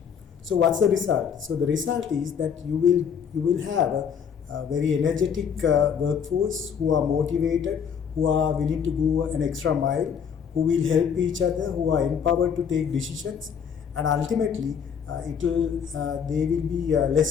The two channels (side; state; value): right; quieter; 7.3 dB